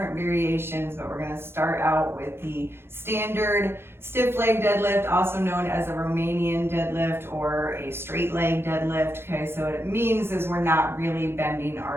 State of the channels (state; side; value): late; left; 0.11 ms